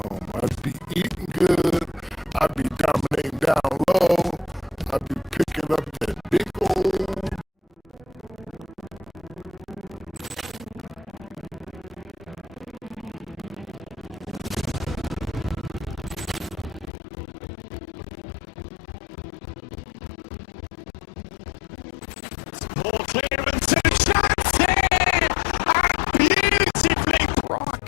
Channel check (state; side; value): drops out; right; at 16.9 s